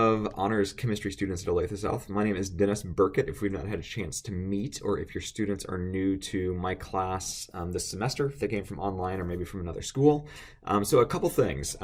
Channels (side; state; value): both; identical; correlation 1.00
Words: honors chemistry students at Olathe South. My name is Dennis Burkett. If we've not had a chance to meet, or if your students are new to my class this semester, if they came from online or maybe from another school. So a couple things.